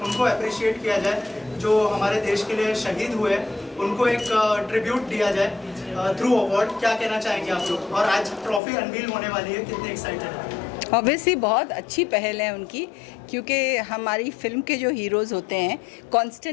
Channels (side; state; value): right; drops out; at 8.6 s